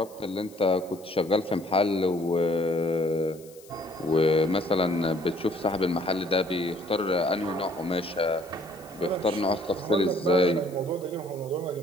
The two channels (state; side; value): noise; left; hiss, 24 dB below the sound